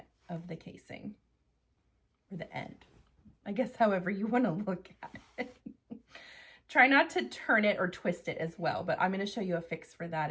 of the casing, or the end, I guess, however you want to look at it. Try not to turn it or twist it as well, but I'm going to show you a fix for that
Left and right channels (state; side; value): identical; both; correlation 1.00